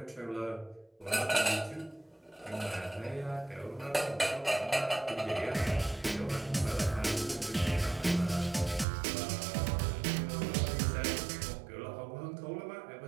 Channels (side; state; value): left; drops out; at 8.8 s